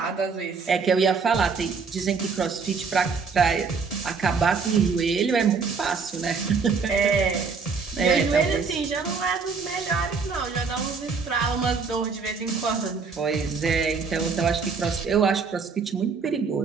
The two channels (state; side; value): quieter; left; 5.1 dB